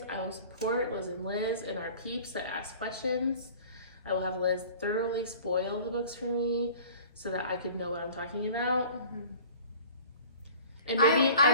I will support Liz and our peeps that ask questions. I will have Liz thoroughly spoil the books for me so that I could know what I'm talking about. Mm-hmm. And maybe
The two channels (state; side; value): inverted; both; correlation -0.45